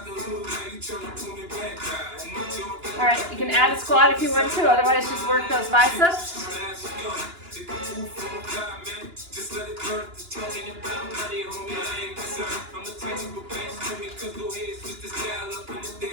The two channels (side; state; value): left; late; 2.9 ms